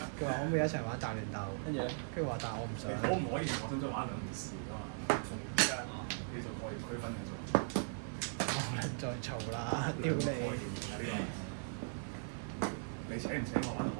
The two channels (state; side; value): silent; left; 52 dB below the other